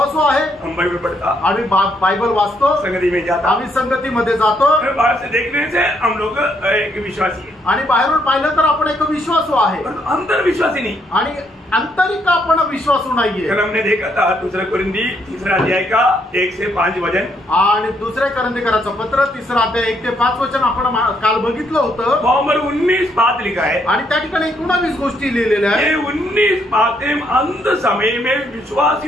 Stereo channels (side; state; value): both; normal; correlation 0.73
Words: आहे, हम बाइबल पढ़ता, आम्ही बायबल वाचतो, संगति में जाता, आम्ही संगतीमध्ये जातो। बाहर से देखने से हम लोग एक विश्वासी है, आणि बाहेरून पाहिलं तर आपण एक विश्वासू आहे, अंदर विश्वासी नहीं। आणि आंतरिक आपण विश्वासू नाहीये। कल हमने देखा था 2 कोरिन्थी 3 अध्याय का 1 से 5 वचन, आणि दुसरे करंदीकराचं पत्र 3 अध्याय 1 ते 5 वचन आपण काल बघितलं होतं। नंबर 19 बात लिखा है आणि त्या ठिकाणी 19 गोष्टी लिहिलेल्या आहेत। ये 19 बातें अंत समय में